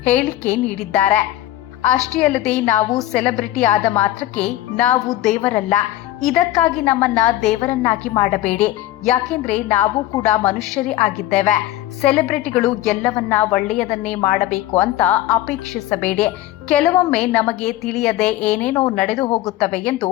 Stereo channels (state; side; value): quieter; right; 14.6 dB